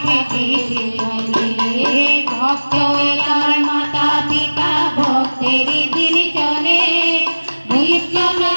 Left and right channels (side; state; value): both; inverted; correlation -1.00